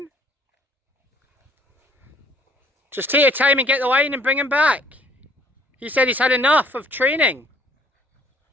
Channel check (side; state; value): both; normal; correlation 0.60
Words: Just take your time and get the line and bring him back. He said he's had enough of training.